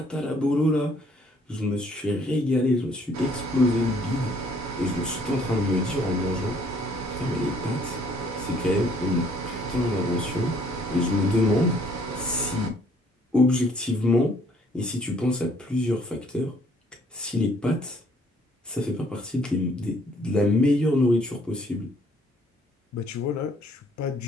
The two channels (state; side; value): normal; both; correlation 0.62